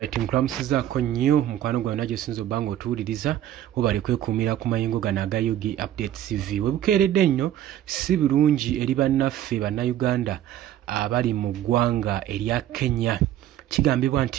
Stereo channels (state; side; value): quieter; left; 12.1 dB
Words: Timukulamusizaako nnyo mukwano gwawe nagyo sinza obanga otuwuliriza webale kwekumira ku mayingo gano aga Yugi Update TV. Webukeeredde nnyo si birungi eri bannaffe bannayuganda abali mu ggwanga erya Kenya. Kigambibwa